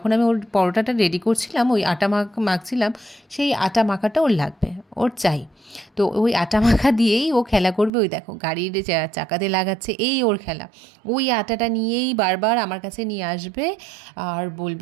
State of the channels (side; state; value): left; drops out; at 7.9 s